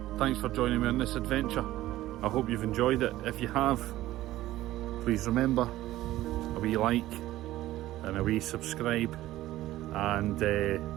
Thanks for joining me on this adventure. I hope you've enjoyed it. If you have, please remember a wee like and a wee subscribe, and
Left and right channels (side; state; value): left; quieter; 15.5 dB